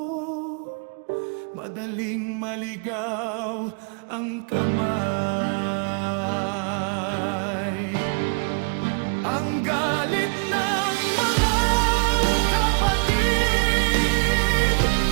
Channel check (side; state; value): left; quieter; 38.1 dB